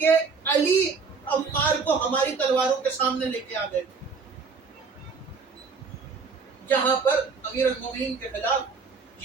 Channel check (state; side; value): quieter; left; 5.0 dB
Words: علی عمار کو ہماری تلواروں کے سامنے لے کے آ گئے. جہاں پر امیر المومنین کے خلاف